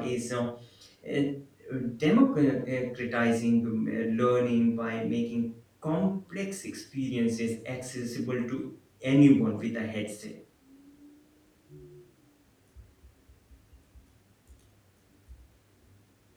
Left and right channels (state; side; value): identical; both; correlation 1.00